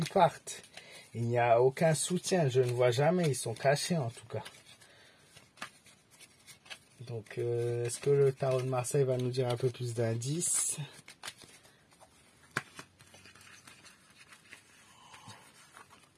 parte. Il n'y a aucun soutien. Je ne vois jamais. Ils sont cachés en tout cas. Donc, est-ce que le tarot de Marseille va nous dire un peu plus d'indices?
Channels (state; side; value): identical; both; correlation 1.00